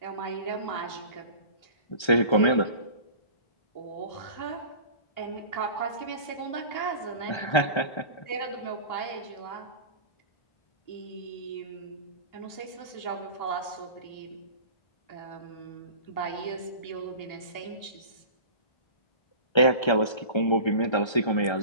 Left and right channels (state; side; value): late; right; 1.3 ms